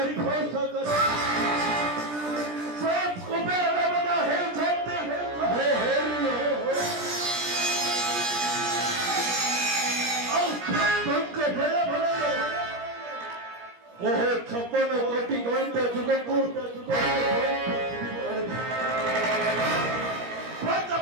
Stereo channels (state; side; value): late; left; 17 ms